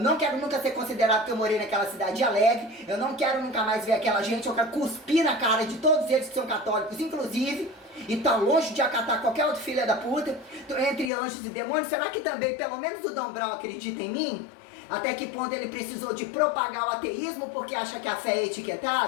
quero nunca ser considerado que eu morei naquela cidade alegre, eu não quero nunca mais ver aquela gente, eu quero cuspir na cara de todos eles que são católicos, inclusive, e tá longe de acatar qualquer outro filho da puta, entre anjos e demônios. Será que também, pelo menos o Dom Brown acredita em mim? Até que ponto ele precisou de propagar o ateísmo porque acha que a fé é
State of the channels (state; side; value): drops out; right; at 11.1 s